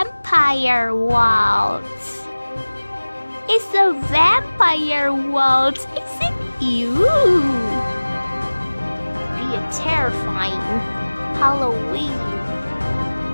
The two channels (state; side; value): inverted; both; correlation -1.00